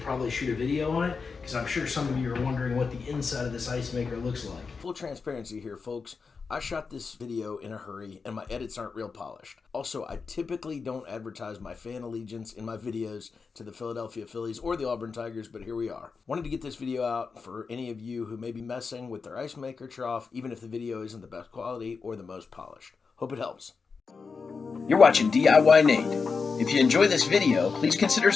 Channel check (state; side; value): quieter; right; 5.0 dB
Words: probably shoot a video on it, because I'm sure some of you are wondering what the inside of this Icemaker looks like. Full transparency here, folks. I shot this video in a hurry and my edits aren't real polished. Also, I typically don't advertise my fan allegiance in my videos to the Philadelphia Phillies or the Auburn Tigers, but here we are. Wanted to get this video out for any of you who may be messing with their Icemaker trough, even if the video isn't the best quality or the most polished. Hope it helps. You're watching DIYNate. If you enjoy this video, please consider